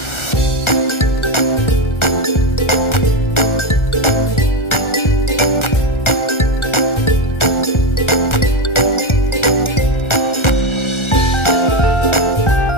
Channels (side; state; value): right; late; 1.4 ms